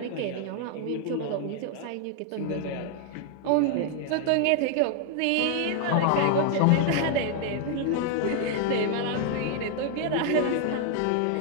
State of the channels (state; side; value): different; both; correlation 0.00